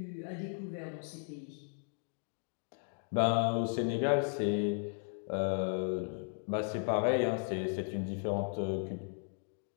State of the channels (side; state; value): right; silent; 54 dB below the other